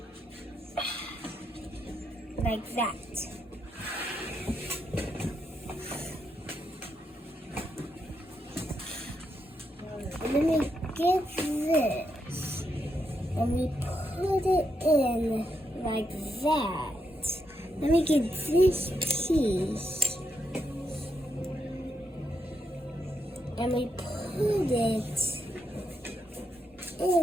like that. And then we get this, and we put it in like that. Then we get this piece, and we put it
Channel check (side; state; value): both; normal; correlation 0.82